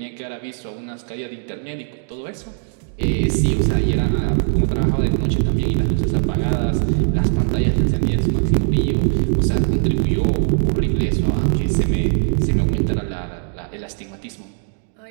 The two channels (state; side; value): silent; left; digital silence